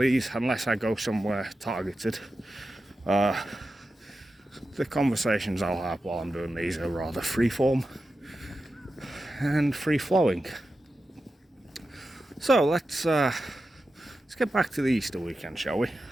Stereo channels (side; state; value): both; normal; correlation 0.91